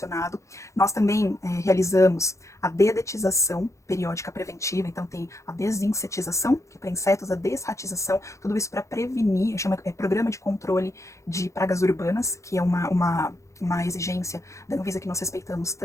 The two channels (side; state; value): right; late; 0.15 ms